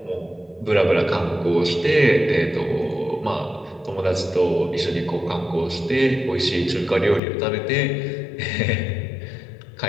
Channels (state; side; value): drops out; right; at 7.2 s